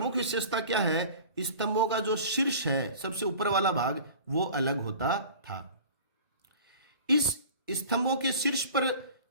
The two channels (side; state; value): both; inverted; correlation -0.40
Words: विशेषता क्या है? स्तंभों का जो शीर्ष है, सबसे ऊपर वाला भाग, वो अलग होता था। इस स्तंभों के शीर्ष पर